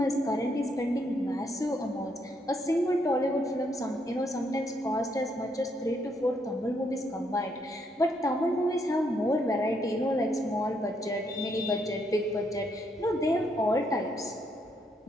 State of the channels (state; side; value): normal; both; correlation 0.75